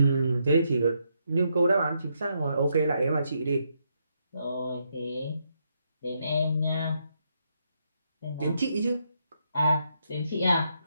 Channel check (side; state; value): both; inverted; correlation -0.78